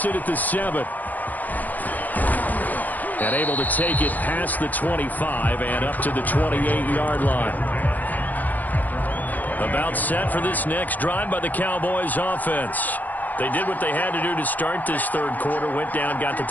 it at the 7. And able to take it past the 25 and up to the 28-yard line. About set for this next drive by the Cowboys offense. They did what they had to do to start this third quarter. Went down, got the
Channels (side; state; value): right; late; 0.082 ms